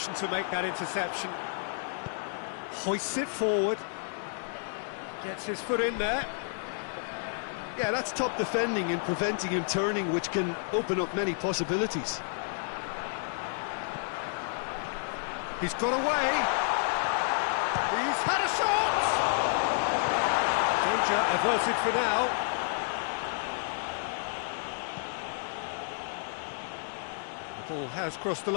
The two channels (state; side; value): silent; right; digital silence